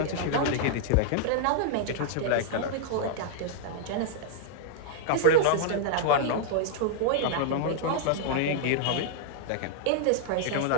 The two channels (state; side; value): different; both; correlation -0.01